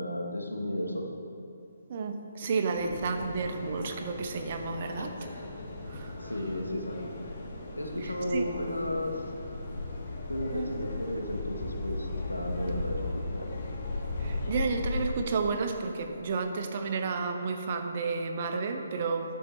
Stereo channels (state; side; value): inverted; both; correlation -0.76